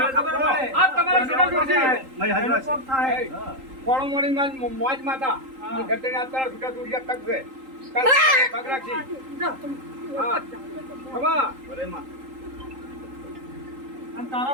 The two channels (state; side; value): late; left; 3.8 ms